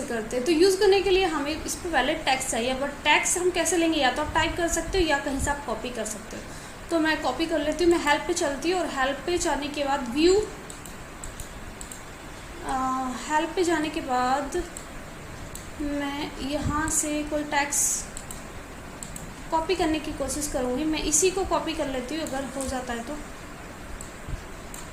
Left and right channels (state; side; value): identical; both; correlation 1.00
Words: करते हैं? तो यूज़ करने के लिए हमें इस पर वैलिड टेक्स्ट चाहिए, बट टेक्स्ट हम कैसे लेंगे? या तो आप टाइप कर सकते हो या कहीं से आप कॉपी कर सकते हो। तो मैं कॉपी कर लेती हूँ, मैं हेल्प पे चलती हूँ और हेल्प पे जाने के बाद हेल्प पे जाने के बाद मैं यहाँ से कोई टेक्स्ट कॉपी करने की कोशिश करूँगी। मैं इसी को कॉपी कर लेती हूँ अगर हो जाता है तो।